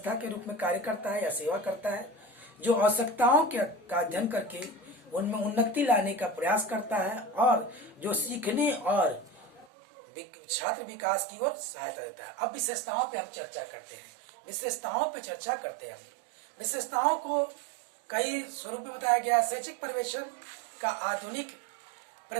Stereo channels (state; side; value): drops out; left; at 9.7 s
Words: के रूप में कार्य करता है या सेवा करता है, जो आवश्यकताओं का अध्ययन करके उनमें उन्नति लाने का प्रयास करता है और जो सीखने और छात्र विकास की ओर सहायता देता है। अब विशेषताओं पे हम चर्चा करते हैं। विशेषताओं को कई स्वरूप में बताया गया। शैक्षिक पर्यवेक्षण का आधुनिक